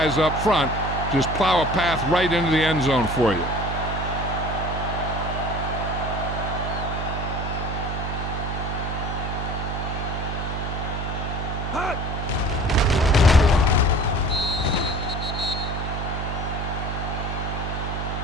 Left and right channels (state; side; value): noise; right; hum, 3 dB below the sound